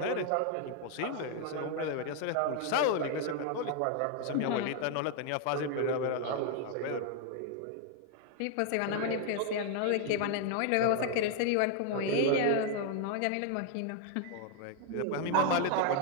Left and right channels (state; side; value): different; both; correlation 0.00